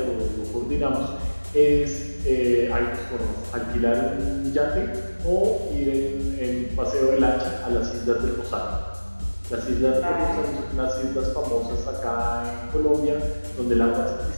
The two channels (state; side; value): inverted; both; correlation -1.00